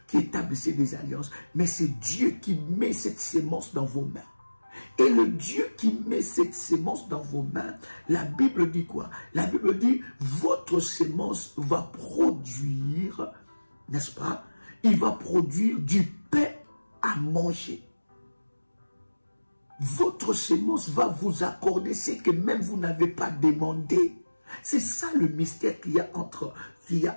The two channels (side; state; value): both; inverted; correlation -1.00